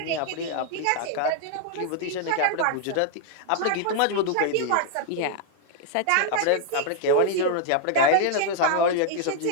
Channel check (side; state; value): both; different; correlation 0.00